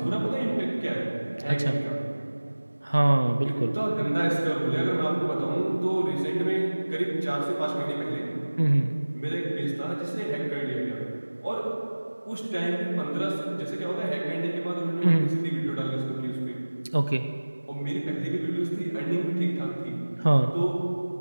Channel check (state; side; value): inverted; both; correlation -1.00